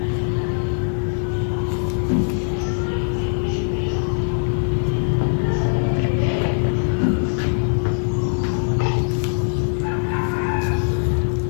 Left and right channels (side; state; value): right; silent; digital silence